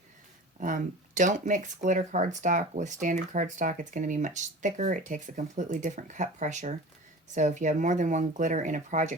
Don't mix glitter cardstock with standard cardstock. It's going to be much thicker. It takes a completely different cut pressure. So if you have more than one glitter in a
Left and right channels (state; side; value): normal; both; correlation 0.37